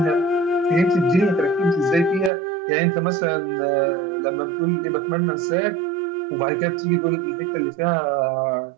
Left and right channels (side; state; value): left; drops out; at 2.3 s